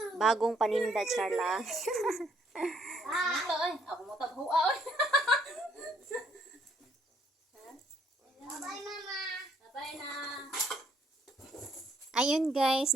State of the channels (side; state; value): both; normal; correlation 0.67